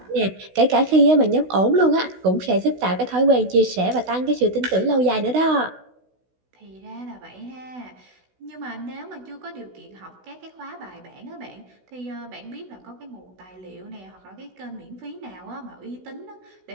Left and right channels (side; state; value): left; late; 16 ms